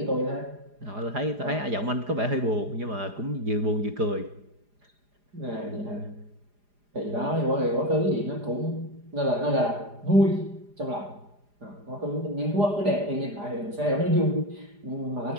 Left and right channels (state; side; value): late; left; 4.9 ms